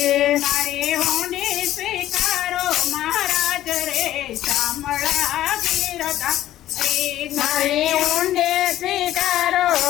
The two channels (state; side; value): quieter; right; 13.5 dB